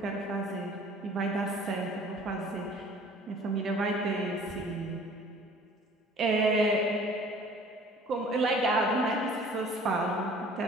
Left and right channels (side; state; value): both; normal; correlation 0.50